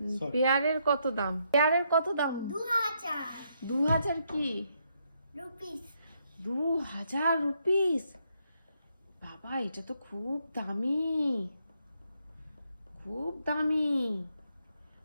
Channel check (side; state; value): both; inverted; correlation -0.76